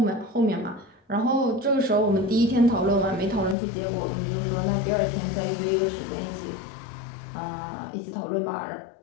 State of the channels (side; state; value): right; drops out; at 3.6 s